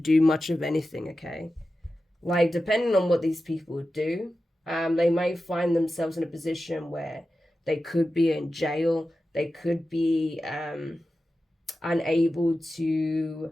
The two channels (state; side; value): normal; both; correlation 0.93